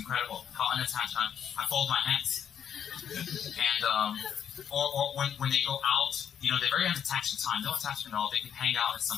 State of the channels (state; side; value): quieter; right; 8.7 dB